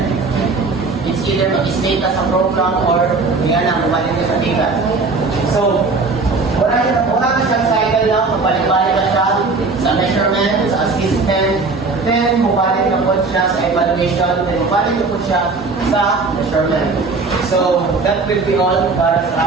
It's either mag-state ka sa program or nga na, mabalik ka sa data. So, wala ka siyang cycle lang, mabalik-balik ka siya sa measurement, sa assessment, then mabalik na po siya sa evaluation, then mabalik na po siya sa measurement. So, that will be all para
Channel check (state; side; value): quieter; left; 4.0 dB